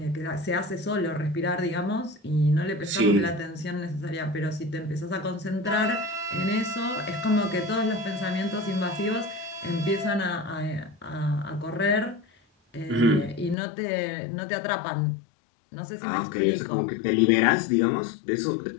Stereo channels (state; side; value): drops out; right; at 13.6 s